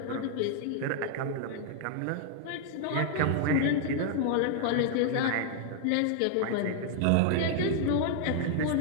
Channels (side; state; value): both; different; correlation -0.01